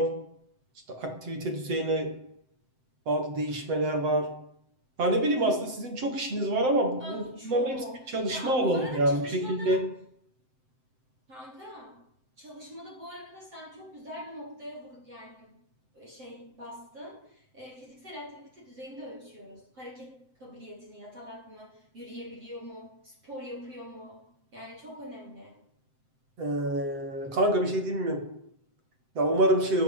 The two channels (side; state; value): left; late; 7.8 ms